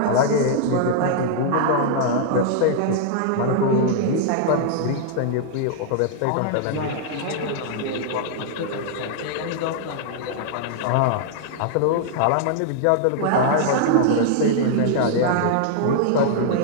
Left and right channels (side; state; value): both; different; correlation -0.01